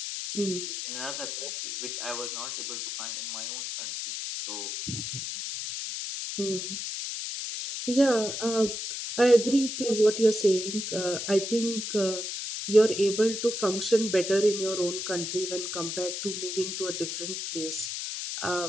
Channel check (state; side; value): noise; left; hiss, 5 dB below the sound